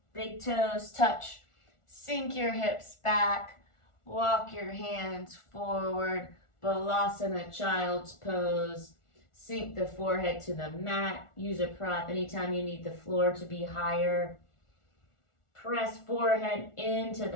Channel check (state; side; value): late; right; 1.4 ms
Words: Big toes touch. Sink your hips back. Walk your hands forward. Balasana, child's pose. Sink the forehead to the mat. Use a prop anytime you need the floor to be higher. Press forehead into